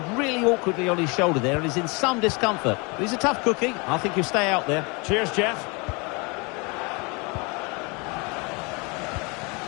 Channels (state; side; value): quieter; right; 29.5 dB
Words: really awkwardly on his shoulder there and is in some discomfort. But he's a tough cookie. I think he'll stay out there. Cheers, Jeff.